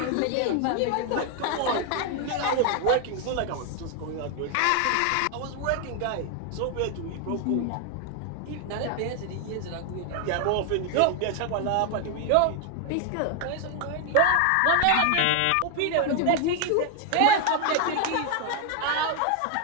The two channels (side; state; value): both; different; correlation 0.00